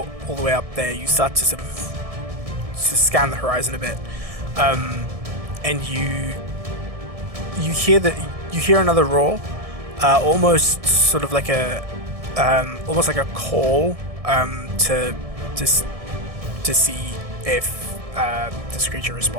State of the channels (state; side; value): late; left; 1.6 ms